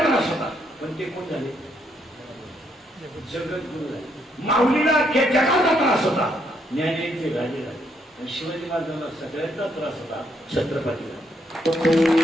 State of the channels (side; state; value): both; normal; correlation 0.74